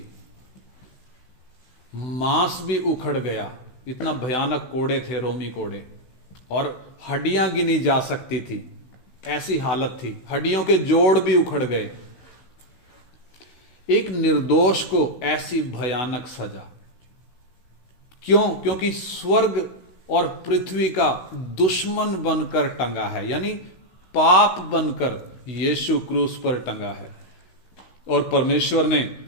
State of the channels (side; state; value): right; late; 16 ms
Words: मांस भी उखड़ गया, इतना भयानक कोड़े थे, रोमी कोड़े, और हड्डियां गिनी जा सकती थी, ऐसी हालत थी, हड्डियों के जोड़ भी उखड़ गए। एक निर्दोष को ऐसी भयानक सजा क्यों? क्योंकि स्वर्ग और पृथ्वी का दुश्मन बनकर टंगा है, यानी पाप बनकर यीशु क्रूस पर टंगा है, और परमेश्वर ने